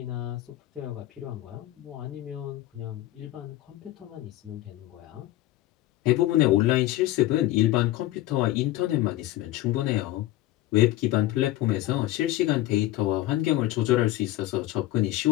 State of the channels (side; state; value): right; quieter; 15.4 dB